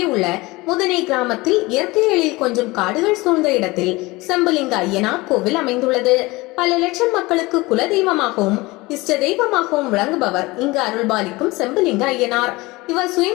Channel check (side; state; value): right; quieter; 22.1 dB